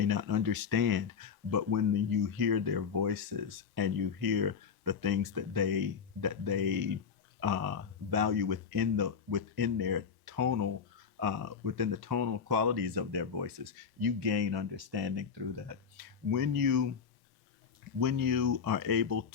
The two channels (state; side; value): quieter; right; 6.5 dB